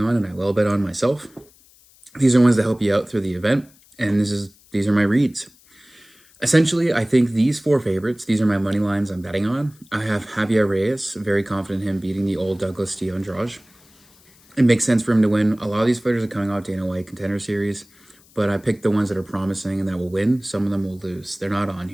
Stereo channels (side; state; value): left; noise; hiss, 28 dB below the sound